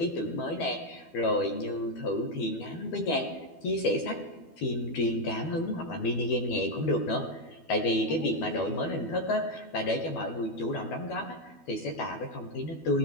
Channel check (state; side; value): late; right; 12 ms